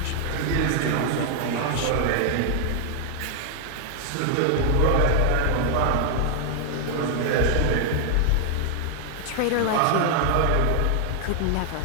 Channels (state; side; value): different; both; correlation 0.00